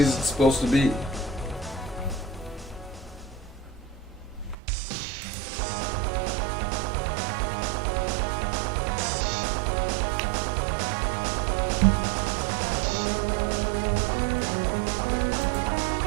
it's supposed to be?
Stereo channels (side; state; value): left; drops out; at 4.5 s